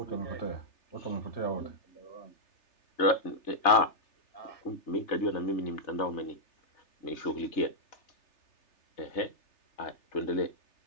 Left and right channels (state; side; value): late; right; 3.3 ms